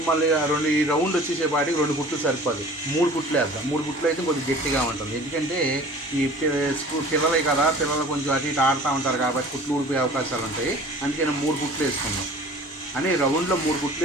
మళ్ళీ ఈ రౌండ్ వచ్చేసేపాటికి రెండు కుట్లు సరిపోదు, మూడు కుట్లు వేద్దాం. మూడు కుట్లు అయితే కొద్దిగా గట్టిగా ఉంటుంది, ఎందుకంటే ఈ పిల్లలే కదా, పిల్లలు కొంచెం అటు ఇటు ఆడుతూ ఉంటారు కాబట్టి కుట్లు ఊడిపోయే అవకాశాలు ఉంటాయి. అందుకని మూడు కుట్లు వేసుకుందాం. అని రౌండ్లో మూడు కుట్లు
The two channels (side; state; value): both; normal; correlation 0.45